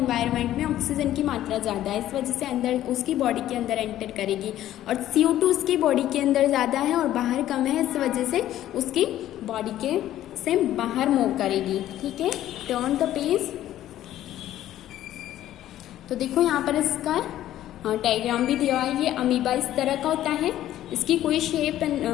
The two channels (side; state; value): right; quieter; 13.0 dB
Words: में ऑक्सीजन की मात्रा ज़्यादा है। इस वजह से अंदर उसकी बॉडी के अंदर एंटर करेगी, और CO2 उसकी बॉडी के अंदर ज़्यादा है और बाहर कम है, इस वजह से उसकी बॉडी के से बाहर मूव करेगी। ठीक है, टर्न द पेज। तो देखो यहाँ पर इसका डायग्राम भी दिया है। ये अमीबा इस तरह का होता है, इसकी कोई शेप